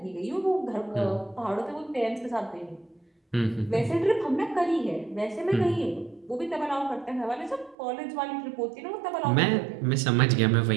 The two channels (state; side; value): drops out; left; at 7.8 s